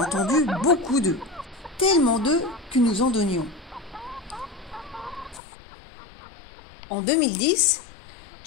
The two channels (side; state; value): right; drops out; at 5.4 s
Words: entendu beaucoup d'œufs. Tellement d'œufs que nous en donnions. En 2010,